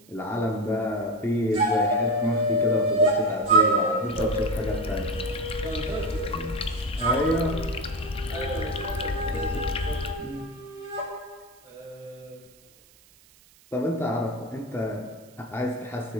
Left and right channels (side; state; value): right; noise; hiss, 28 dB below the sound